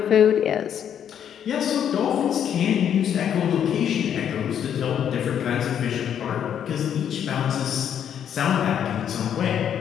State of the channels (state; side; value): quieter; right; 9.1 dB